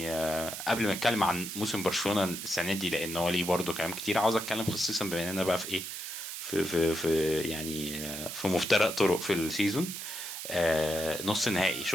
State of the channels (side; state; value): right; noise; hiss, 7 dB below the sound